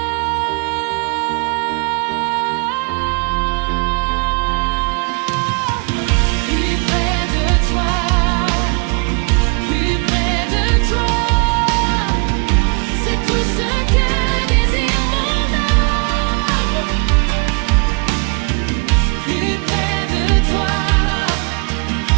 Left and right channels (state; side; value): quieter; left; 35.4 dB